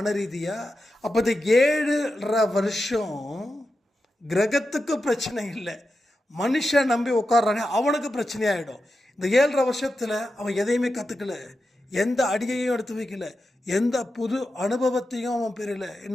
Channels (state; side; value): normal; both; correlation 0.90